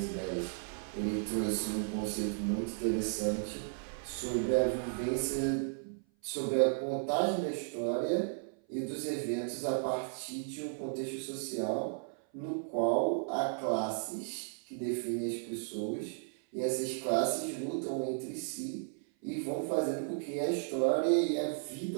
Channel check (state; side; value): silent; left; 55 dB below the other